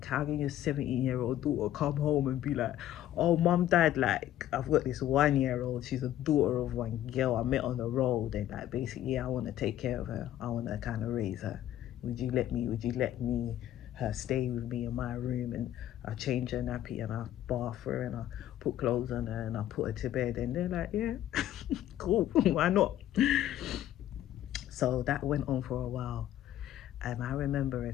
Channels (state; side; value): quieter; right; 12.5 dB